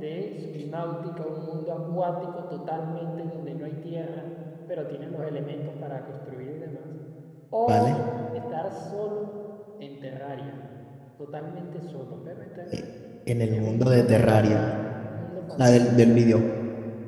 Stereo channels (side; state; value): both; identical; correlation 1.00